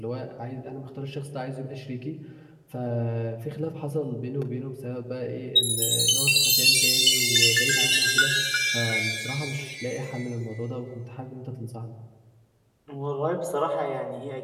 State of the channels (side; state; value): both; identical; correlation 1.00